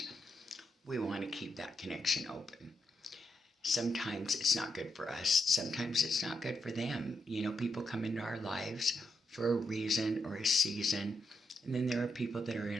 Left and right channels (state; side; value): normal; both; correlation 0.82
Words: we want to keep that connection open. Sometimes it's not good for us. Sometimes it's not good for them. You know, people come into our lives for a reason or a season. And then there are people that are